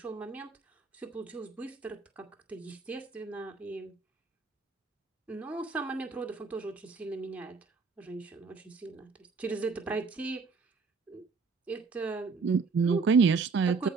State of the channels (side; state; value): left; quieter; 4.7 dB